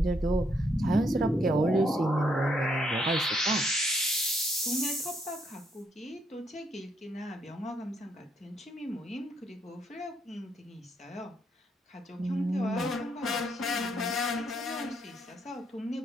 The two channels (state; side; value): normal; both; correlation 0.74